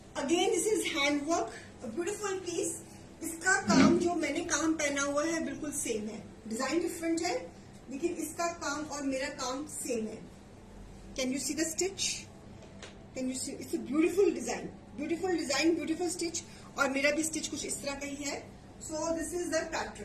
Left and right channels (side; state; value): both; identical; correlation 1.00